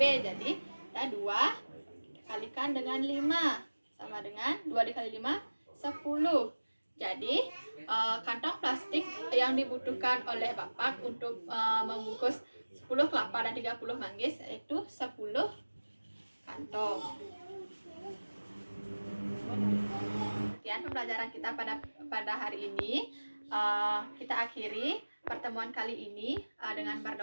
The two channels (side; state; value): both; inverted; correlation -1.00